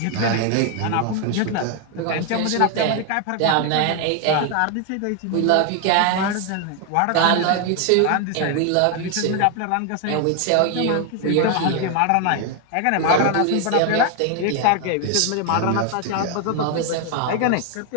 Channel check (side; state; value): both; different; correlation 0.01